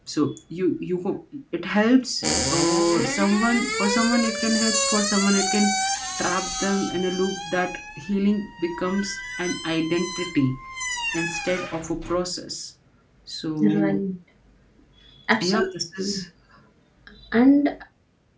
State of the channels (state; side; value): identical; both; correlation 1.00